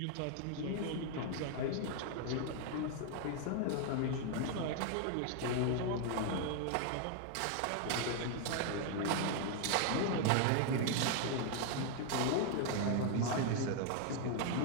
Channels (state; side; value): different; both; correlation 0.00